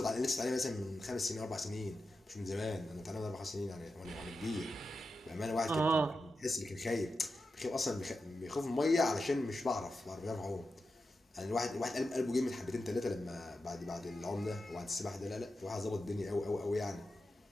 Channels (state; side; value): normal; both; correlation 0.90